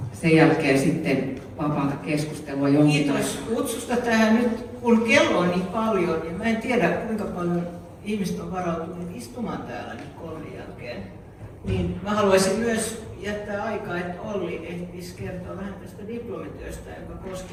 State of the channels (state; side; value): identical; both; correlation 1.00